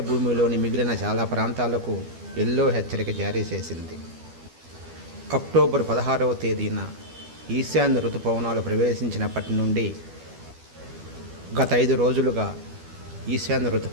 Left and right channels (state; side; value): late; left; 12 ms